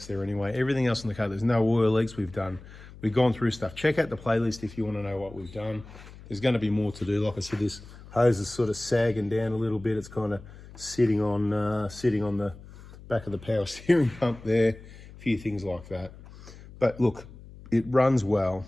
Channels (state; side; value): noise; left; hum, 18 dB below the sound